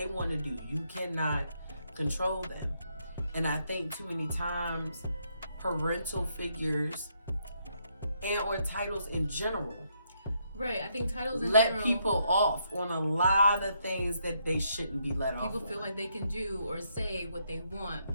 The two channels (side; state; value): both; inverted; correlation -0.75